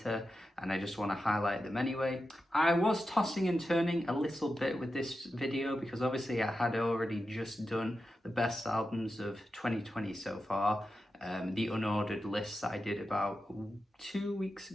and I just want to highlight them anyway. I was tossing and turning a little bit with this video because obviously I had already just done the best albums of 2020 so far. The unordered list that I did about 2 weeks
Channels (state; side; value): normal; both; correlation 0.90